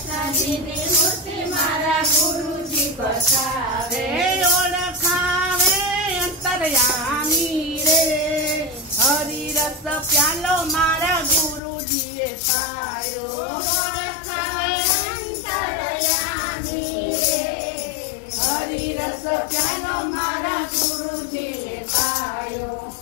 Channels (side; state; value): right; drops out; at 11.6 s